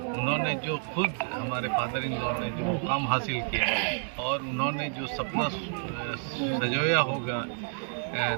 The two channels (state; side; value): silent; left; 58 dB below the other